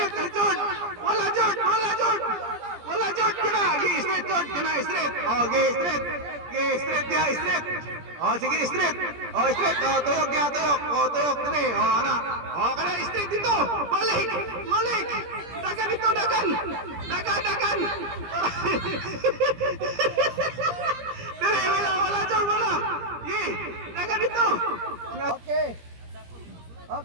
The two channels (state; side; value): late; left; 17 ms